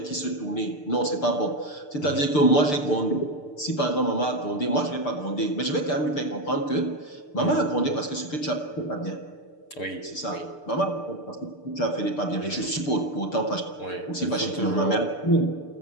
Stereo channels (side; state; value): right; late; 6.7 ms